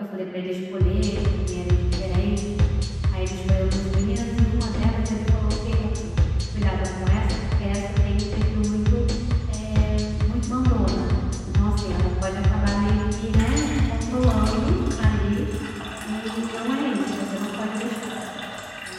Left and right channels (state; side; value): identical; both; correlation 1.00